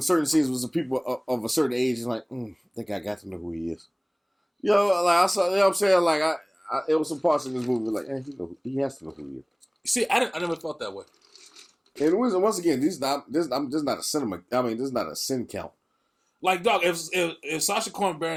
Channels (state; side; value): identical; both; correlation 1.00